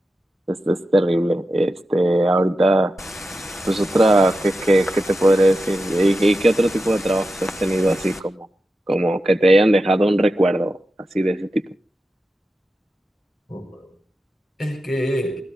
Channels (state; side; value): normal; both; correlation 0.91